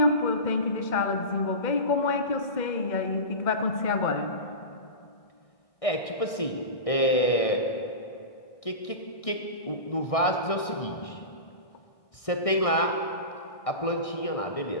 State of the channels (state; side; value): late; right; 1.6 ms